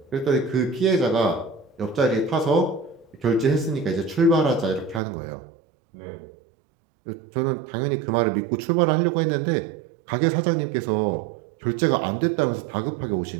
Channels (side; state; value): left; drops out; at 5.0 s